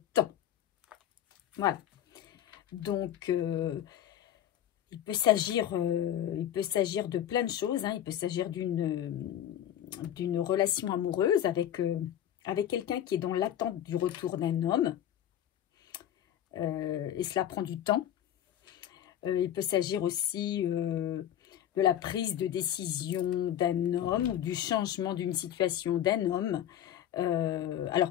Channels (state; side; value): quieter; right; 10.8 dB